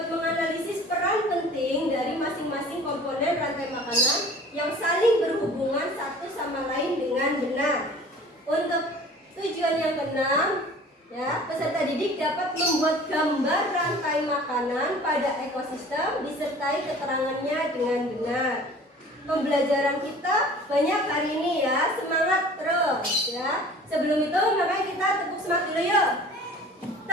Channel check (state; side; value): normal; both; correlation 0.46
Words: menganalisis peran penting dari masing-masing komponen rantai makanan yang saling berhubungan satu sama lain dengan benar. Untuk tujuan yang keenam, ya, peserta didik dapat membuat gambar rantai makanan pada ekosistem disertai keterangannya dengan benar. Pembelajaran kita banyak hari ini ya, semangat terus ya. Sebelum itu makanya kita tepuk semangat dulu yuk.